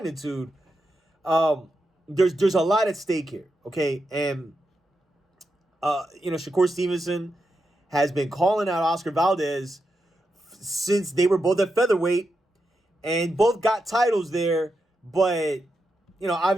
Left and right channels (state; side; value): normal; both; correlation 0.86